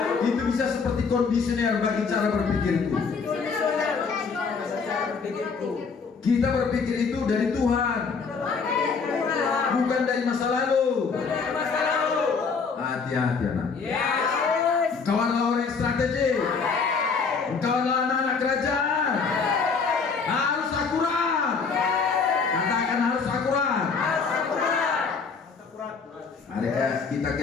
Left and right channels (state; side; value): quieter; right; 5.2 dB